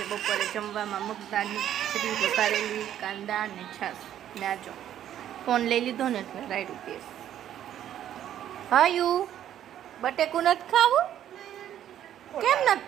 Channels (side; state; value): left; quieter; 11.0 dB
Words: બપોરે જમવામાં મગદાળની ખીચડી વઘારેલી કાંદા અને છાશ ને આજો ફોન લઈ લીધો ને એટલે રાયડું પીસ. હાયું બટેકું નથી ખાવું? કેમ